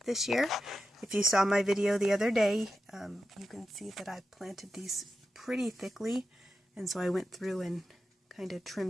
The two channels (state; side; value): normal; both; correlation 0.89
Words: this year. If you saw my video the other day, you can see that I planted these pretty thickly, and so I went through and kind of